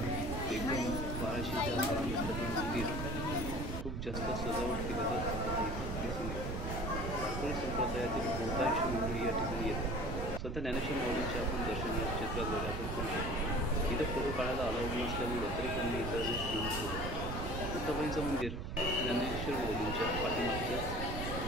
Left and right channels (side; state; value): right; noise; rumble, 4 dB below the sound